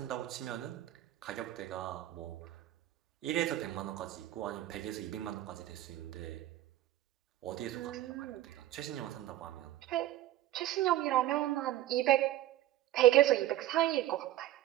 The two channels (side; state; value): left; quieter; 13.9 dB